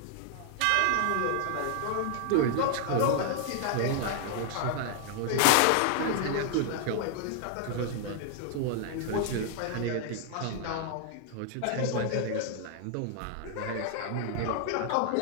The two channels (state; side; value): different; both; correlation 0.00